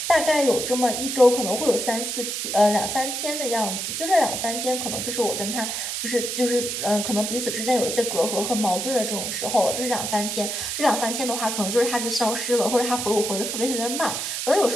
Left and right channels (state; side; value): noise; right; hiss, 3 dB below the sound